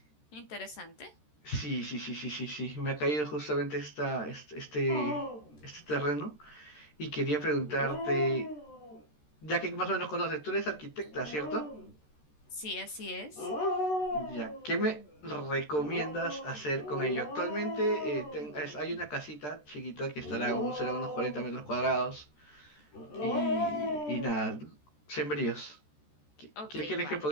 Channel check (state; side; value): late; right; 13 ms